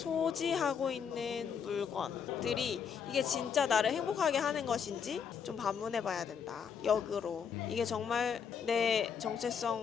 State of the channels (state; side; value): quieter; right; 7.0 dB